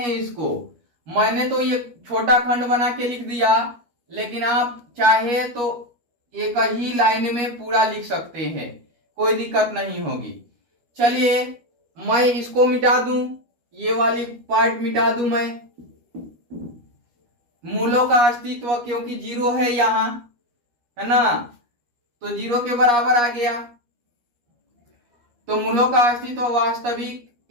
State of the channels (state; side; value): late; left; 12 ms